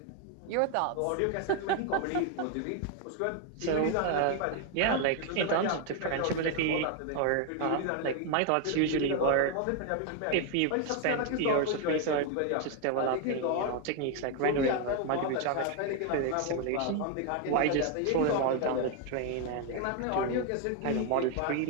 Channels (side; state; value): both; different; correlation 0.01